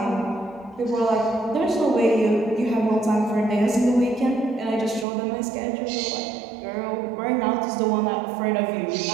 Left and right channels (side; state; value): left; drops out; at 5.1 s